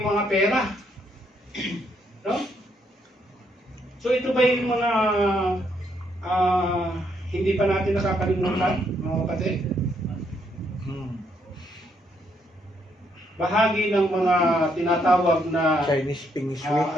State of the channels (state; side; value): normal; both; correlation 0.73